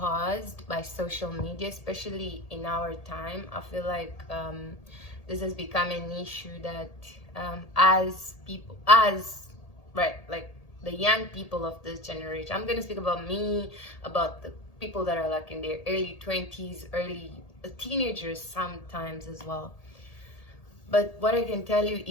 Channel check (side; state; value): right; late; 1.8 ms